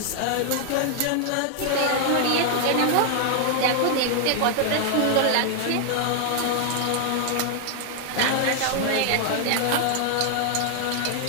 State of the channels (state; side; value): different; both; correlation 0.00